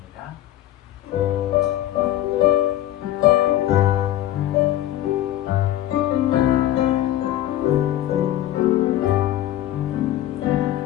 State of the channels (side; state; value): right; quieter; 13.4 dB